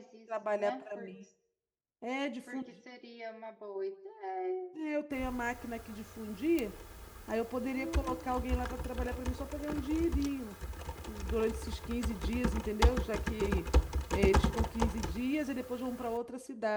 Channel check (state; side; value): identical; both; correlation 1.00